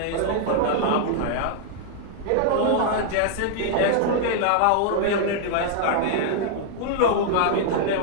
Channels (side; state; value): both; different; correlation -0.01